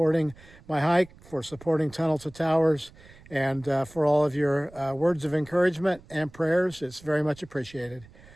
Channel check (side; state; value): right; noise; rumble, 23 dB below the sound